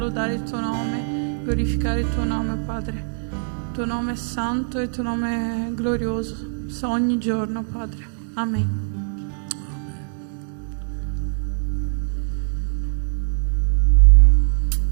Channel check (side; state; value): left; silent; 64 dB below the other